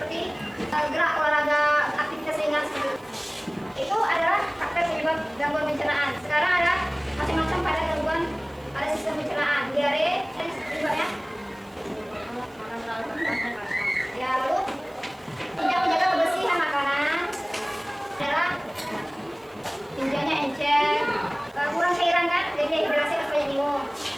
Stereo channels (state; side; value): noise; right; hiss, 30 dB below the sound